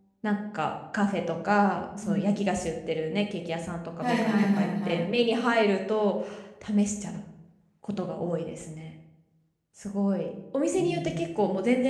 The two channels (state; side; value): identical; both; correlation 1.00